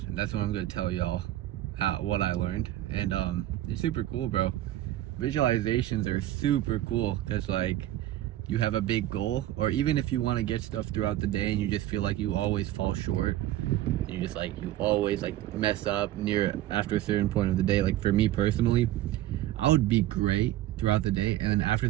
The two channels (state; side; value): quieter; left; 14.2 dB